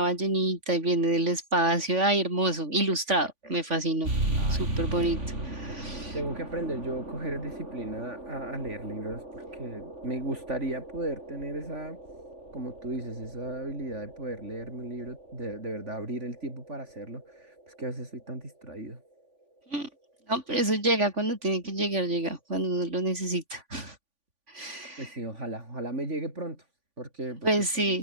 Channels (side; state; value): left; late; 3.5 ms